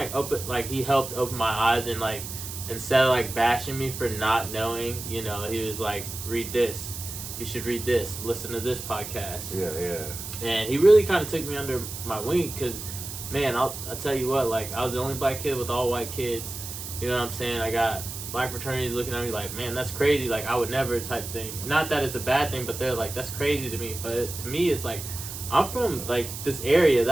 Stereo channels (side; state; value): right; noise; hiss, 9 dB below the sound